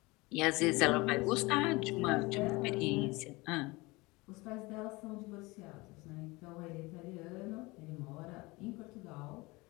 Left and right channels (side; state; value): right; quieter; 23.5 dB